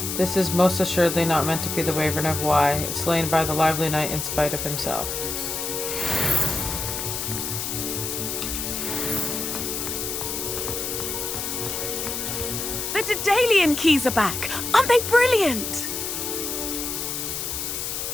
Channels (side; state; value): left; noise; hiss, 3 dB below the sound